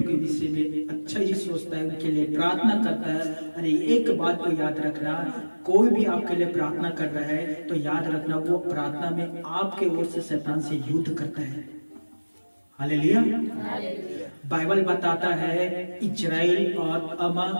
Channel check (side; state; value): both; inverted; correlation -1.00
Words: के विषय में अच्छा ही सोचता है, उनके लिए प्रार्थना करता है। अरे एक बात को याद रखना, कोई भी आपके लिए प्रार्थना कर रहा है तो याद रखना वो प्रार्थना में आपके ओर से शैतान से युद्ध करता है। हालेलुया। बाइबल बताता है इजराइल और